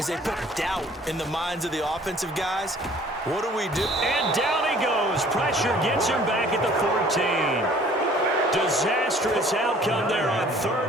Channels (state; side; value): normal; both; correlation 0.54